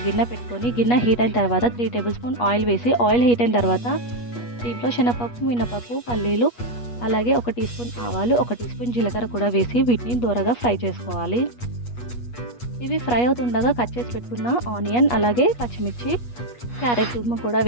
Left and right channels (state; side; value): late; right; 8.3 ms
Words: గిన్నె పెట్టుకొని, గిన్నె హీట్ అయిన తర్వాత 3 టేబుల్ స్పూన్ ఆయిల్ వేసి, ఆయిల్ హీట్ అయిన తర్వాత దీంట్లో శనగపప్పు, మినపప్పు, పల్లీలు, అలాగే 1 టీ స్పూన్ ఆవాలు, 1 టీ స్పూన్ జీలకర్ర కూడా వేసి వీటిని దూరగా ఫ్రై చేసుకోవాలి. ఇవి ఫ్రై అవుతుండగా కట్ చేసి పెట్టుకున్న ఆనియన్, అలాగే పచ్చిమిర్చి, క్యారెట్ తురుము కూడా